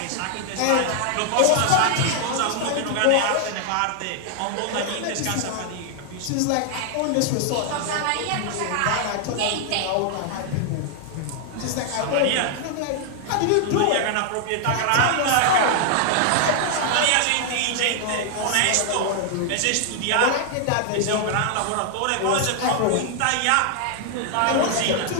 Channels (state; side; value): different; both; correlation 0.00